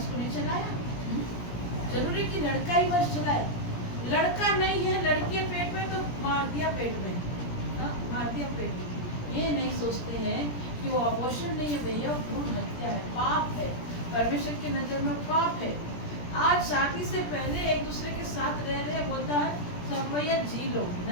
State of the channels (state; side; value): late; right; 17 ms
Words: को नहीं चलाया? जरूरी कि लड़का ही वंश चलाए? लड़का नहीं है, लड़की है पेट में तो मार दिया पेट में, हाँ, मार दिया पेट में। ये नहीं सोचते हैं कि वो अबॉर्शन नहीं है भैया, भ्रूण हत्या है, पाप है, परमेश्वर की नजर में पाप है। आज शादी से पहले एक दूसरे के साथ रह रहे बोलता है सब भैया जी लो,